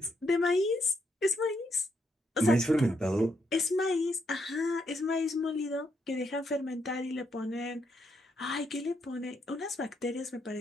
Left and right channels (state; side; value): normal; both; correlation 0.78